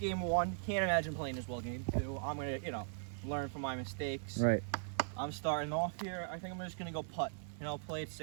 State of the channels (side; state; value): left; silent; digital silence